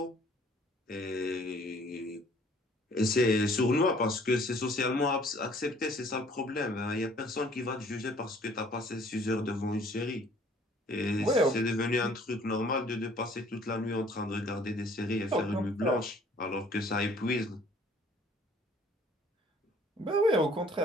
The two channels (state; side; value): normal; both; correlation 0.57